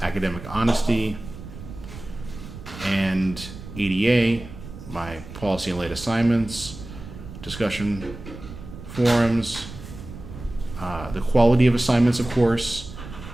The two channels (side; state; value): right; noise; rumble, 13 dB below the sound